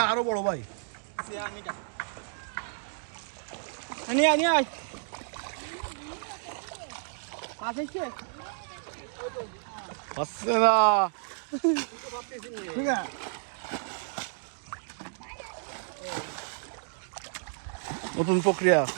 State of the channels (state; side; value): silent; left; digital silence